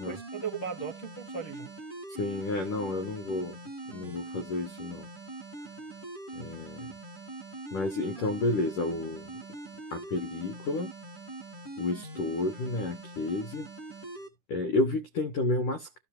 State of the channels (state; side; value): late; right; 10 ms